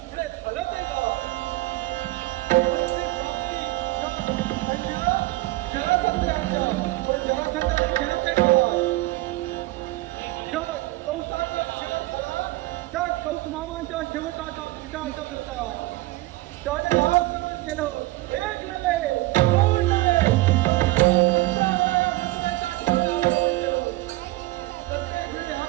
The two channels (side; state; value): left; quieter; 19.3 dB